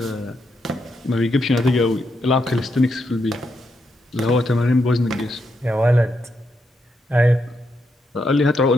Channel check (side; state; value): both; normal; correlation 0.81